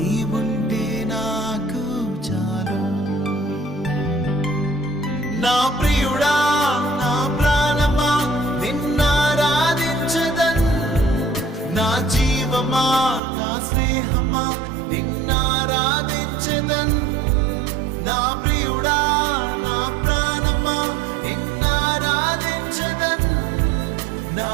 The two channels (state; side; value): drops out; left; at 13.2 s